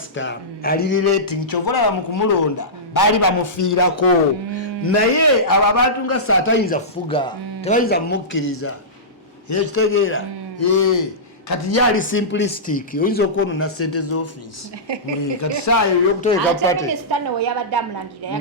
ali relating kyovola bamukumulonda bali bamufiirako naye abo abantu nga Saha tayinza fuga tebayinza mukkiriza ekitegeera kati yali simplistic oyinza okwonona sente z'office kati saayo yokuteeka pate minisita no yabadde amulangira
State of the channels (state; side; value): normal; both; correlation -0.17